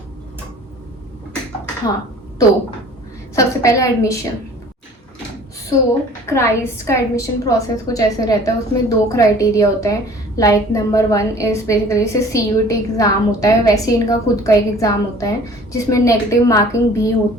हाँ, तो सबसे पहले एडमिशन। क्राइस्ट का एडमिशन प्रोसेस कुछ ऐसे रहता है। उसमें 2 क्राइटेरिया होते हैं। लाइक नंबर 1 इज़ बेसिकली से CUT एग्ज़ाम होता है, वैसे इनका खुद का एक एग्ज़ाम होता है जिसमें नेगेटिव मार्किंग भी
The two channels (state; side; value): normal; both; correlation 0.48